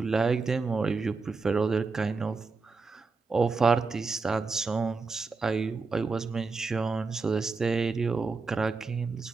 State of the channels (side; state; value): left; quieter; 4.3 dB